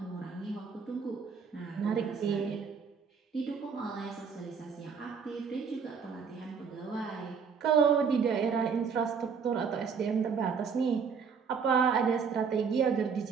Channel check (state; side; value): quieter; left; 6.0 dB